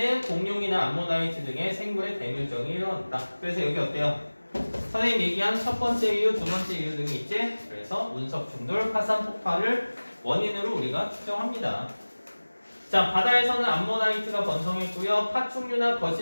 공룡이나 암모나이트 등의 생물의 대멸종이 일어났다. 그래서 여기 어때요? 선생님 얘기한 첫 번째 이유, 두 번째 이유 등이 있지. 그래서 운석 충돌, 화산 폭발을 원인으로 우리가 추정합니다. 자, 바다에서는 암모나이트가 번성했고요. 파충류나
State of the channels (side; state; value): both; inverted; correlation -1.00